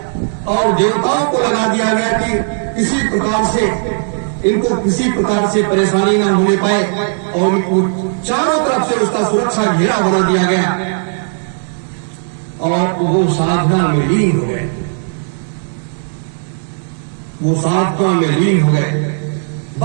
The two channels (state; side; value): silent; left; digital silence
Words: और देवताओं को लगा दिया गया कि किसी प्रकार से इनको किसी प्रकार से परेशानी न होने पाए और इनको चारों तरफ से उसका सुरक्षा घेरा बना दिया गया और वो साधना में लीन हो गए। वो साधना में लीन हो गए।